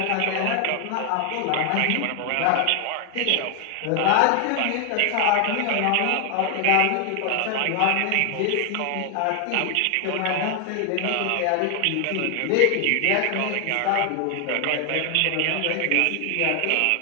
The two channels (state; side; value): different; both; correlation 0.00